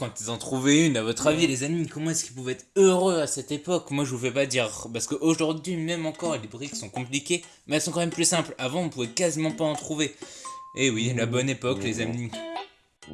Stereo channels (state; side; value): identical; both; correlation 1.00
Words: ils en trouvaient une. À votre avis les amis, comment est-ce qu'ils pouvaient être heureux à cette époque? Moi je vous fais pas dire, parce qu'aujourd'hui même encore les briques sont compliquées, mais elles sont quand même plus simples. Avant on pouvait quasiment pas en trouver. Et oui, la bonne époque les amis.